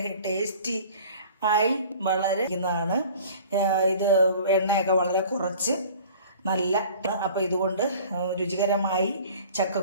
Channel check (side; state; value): both; inverted; correlation -0.46